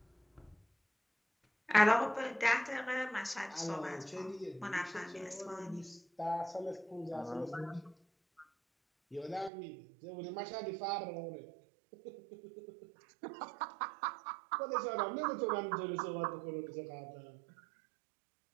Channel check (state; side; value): drops out; left; at 9.5 s